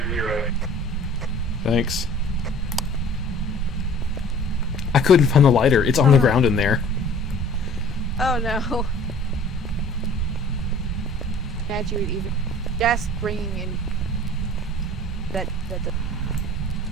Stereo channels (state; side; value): normal; both; correlation 0.48